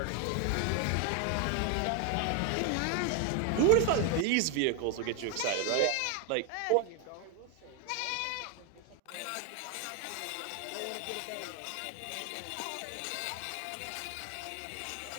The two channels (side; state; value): both; different; correlation 0.01